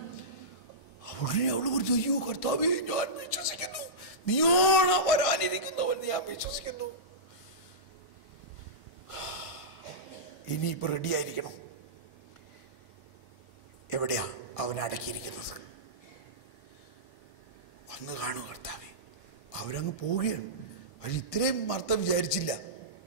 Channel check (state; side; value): late; right; 1.5 ms